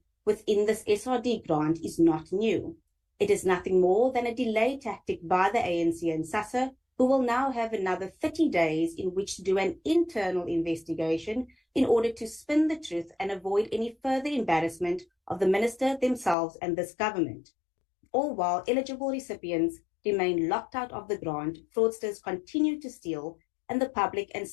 within this SRD grant is not new. It is nothing more than a delay tactic by the ANC and SASSA, who will now have another 30 days in which to do an internal investigation in order to spin the truth and avoid any further embarrassment of the minister themselves and this government. All while eligible recipients remain locked out of the grant, fraudsters continue to steal, and the public and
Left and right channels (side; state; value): right; drops out; at 16.4 s